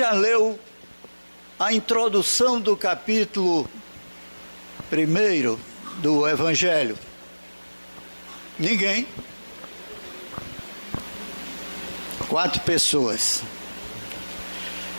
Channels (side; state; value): both; inverted; correlation -1.00